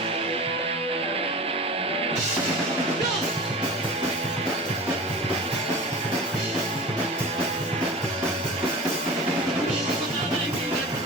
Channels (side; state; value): both; normal; correlation 0.35